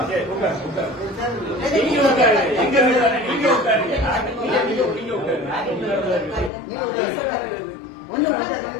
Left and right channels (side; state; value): right; drops out; at 6.5 s